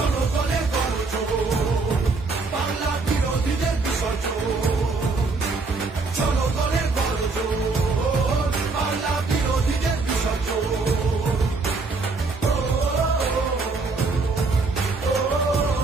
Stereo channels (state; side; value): quieter; left; 3.9 dB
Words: গর্জন, বাংলা বিরোধীদের বিসর্জন। জনগণের গর্জন, বাংলা বিরোধীদের বিসর্জন।